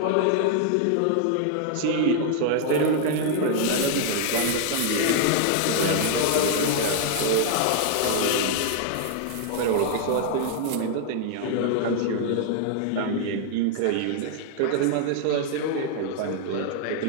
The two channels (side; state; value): both; different; correlation 0.00